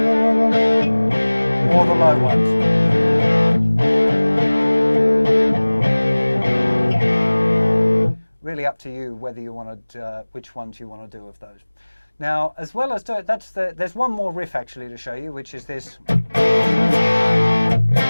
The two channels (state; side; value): inverted; both; correlation -1.00